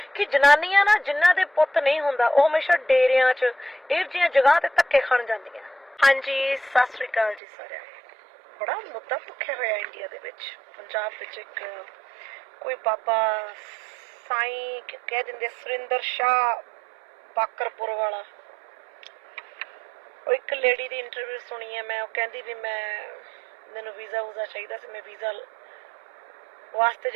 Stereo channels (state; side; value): drops out; left; at 7.4 s